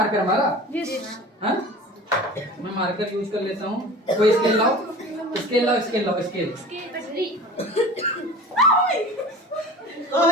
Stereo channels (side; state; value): both; normal; correlation 0.38